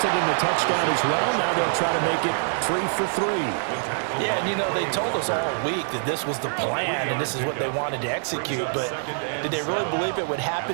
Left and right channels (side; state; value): left; silent; 62 dB below the other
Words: in the touchdown as well. Now they'll try to make it 3 for 3. Yeah, and you know, they told us all week that this was the plan and this is what they wanted to execute, but did they really believe it would